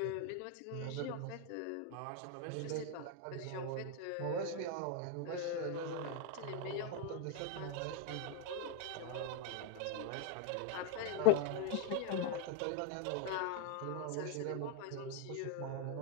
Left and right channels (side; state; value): both; different; correlation 0.01